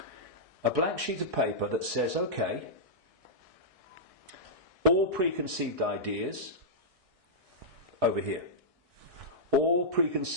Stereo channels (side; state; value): left; late; 1.6 ms